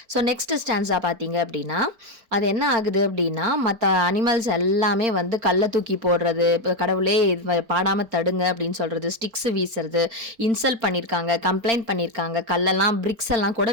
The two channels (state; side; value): late; left; 4.4 ms